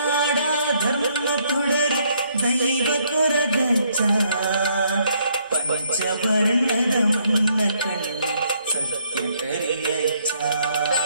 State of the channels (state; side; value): inverted; both; correlation -0.70